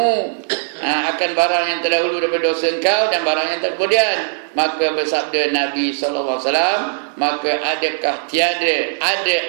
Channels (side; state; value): left; silent; digital silence